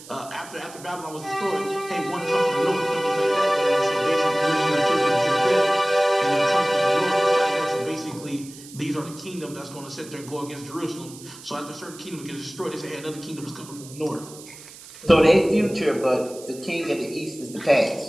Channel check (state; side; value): noise; right; hiss, 18 dB below the sound